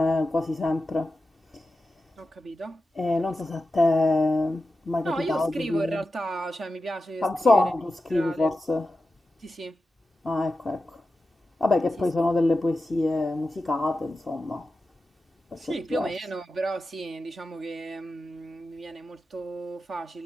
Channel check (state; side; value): normal; both; correlation 0.92